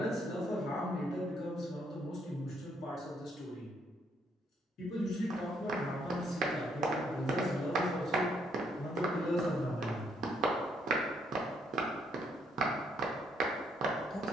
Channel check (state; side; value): normal; both; correlation 0.71